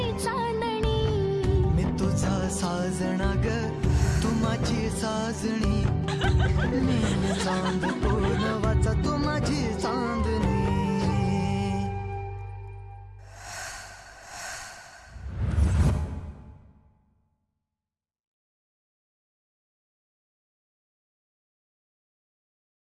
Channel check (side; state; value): both; identical; correlation 1.00